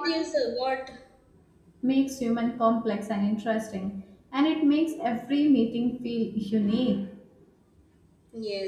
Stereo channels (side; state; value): both; identical; correlation 1.00